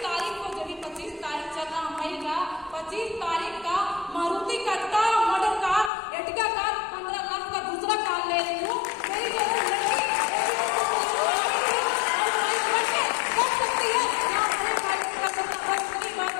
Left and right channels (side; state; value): right; drops out; at 5.9 s